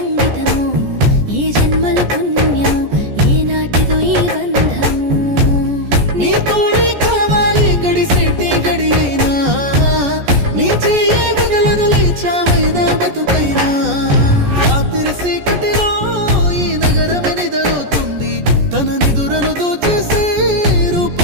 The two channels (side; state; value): left; late; 14 ms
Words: ఏ జన్మల పుణ్యము ఏ నాటిదో ఈ బంధము నీ తోడే కావాలి గడిసేటి గడి అయినా నీ చెయ్యే వదలను లేచావైనా బతుకైనా రాత్రి సీకటిలో ఈ నగరమే నిదరవుతుంది తన నిదురను దోచేసే